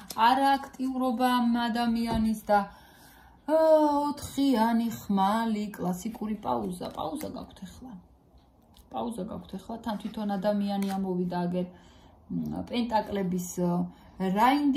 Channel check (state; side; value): identical; both; correlation 1.00